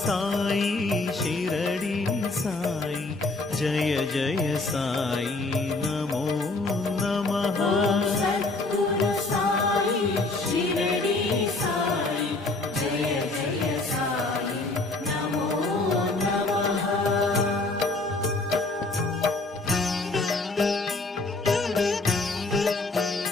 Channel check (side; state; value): right; quieter; 3.2 dB